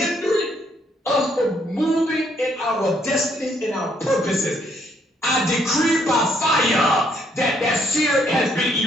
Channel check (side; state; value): both; normal; correlation 0.70